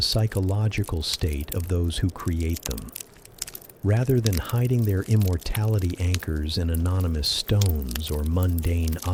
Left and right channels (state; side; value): identical; both; correlation 1.00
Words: psychological state of those who create them. Rather than hiding their immortality anchors in anonymous stones or mundane